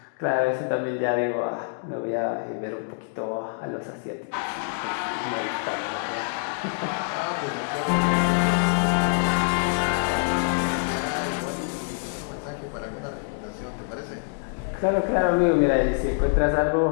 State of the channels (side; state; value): right; silent; digital silence